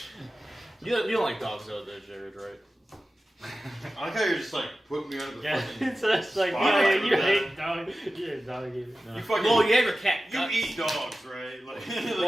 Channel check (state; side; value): normal; both; correlation 0.95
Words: You don't like dogs though, Jared, right? I like how you're just like putting me under the Yeah, fucking. it's just like, Spot yeah, on you for hate dog. You're a dog eater. No. You fucking. Well, you have your cat you guts. eat dogs, right? Like,